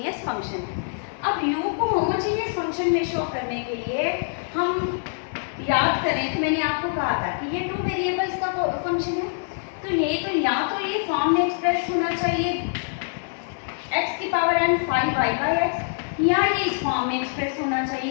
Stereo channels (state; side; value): silent; right; digital silence